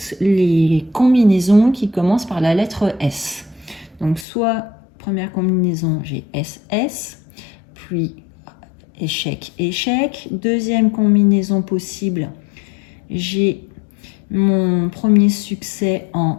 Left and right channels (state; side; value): drops out; right; at 4.2 s